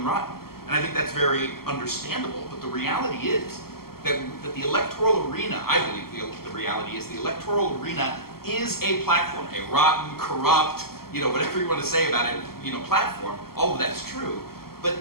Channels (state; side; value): late; right; 0.94 ms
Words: rotten. And I think that's very understandable. But the reality is that the electoral arena, I believe the reality is the electoral arena is a platform, a rotten, corrupt, you know, whatever you want to say about it, you know, platform. All of that's true.